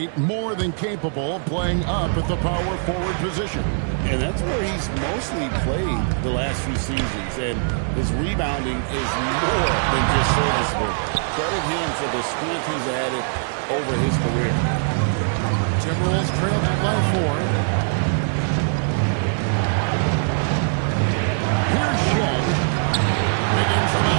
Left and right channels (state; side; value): silent; left; 64 dB below the other